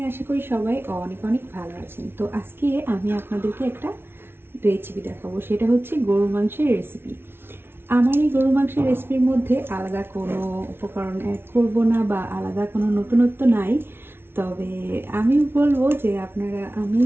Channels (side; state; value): left; late; 0.11 ms